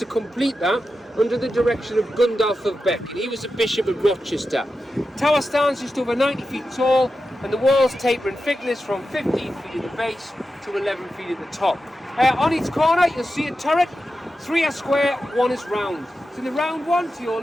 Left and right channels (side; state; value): both; normal; correlation 0.91